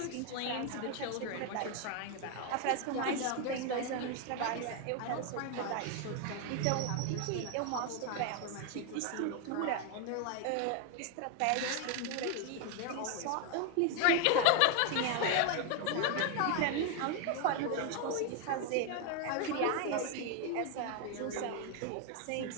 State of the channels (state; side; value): different; both; correlation 0.01